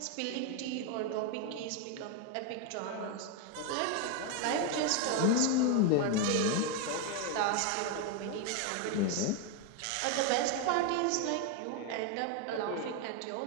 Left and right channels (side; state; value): both; different; correlation 0.01